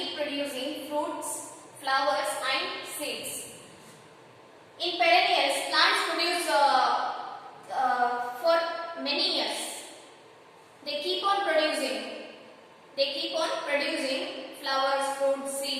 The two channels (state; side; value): identical; both; correlation 1.00